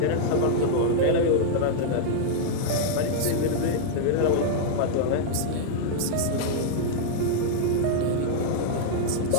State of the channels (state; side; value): different; both; correlation -0.01